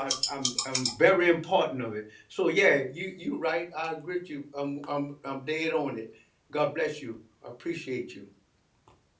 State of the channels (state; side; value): identical; both; correlation 1.00